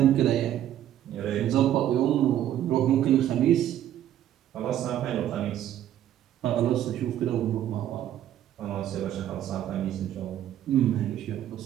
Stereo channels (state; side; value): quieter; left; 11.6 dB